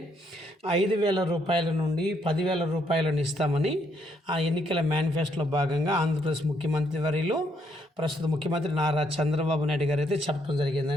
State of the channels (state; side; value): normal; both; correlation 0.73